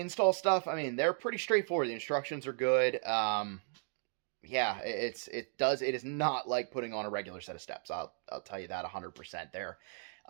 stuff, I mean, they're pretty straightforward. The instructions are good. Yeah, it is not like putting on a regular set of steps. I'll tell you that 100%. They're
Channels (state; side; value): silent; left; 54 dB below the other